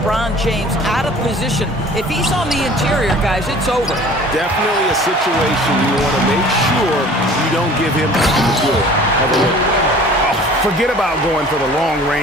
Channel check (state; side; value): normal; both; correlation 0.47